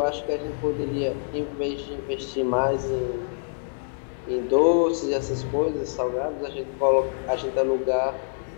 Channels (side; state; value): right; silent; 61 dB below the other